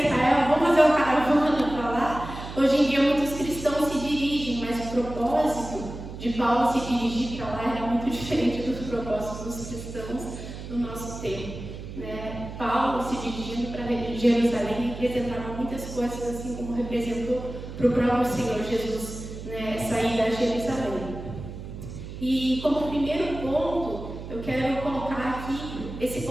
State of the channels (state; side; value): noise; right; hum, 10 dB below the sound